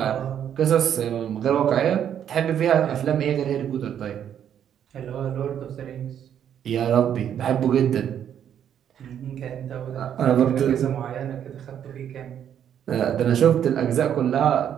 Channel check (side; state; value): left; quieter; 9.4 dB